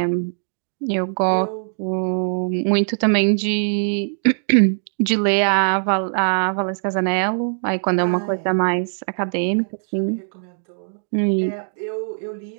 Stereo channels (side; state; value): left; silent; digital silence